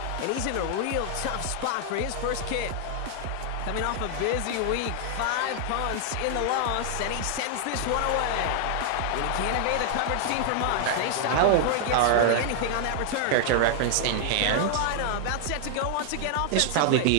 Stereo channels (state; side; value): different; both; correlation 0.00